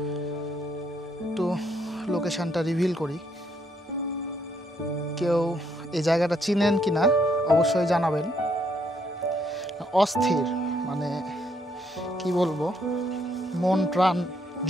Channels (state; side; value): normal; both; correlation 0.72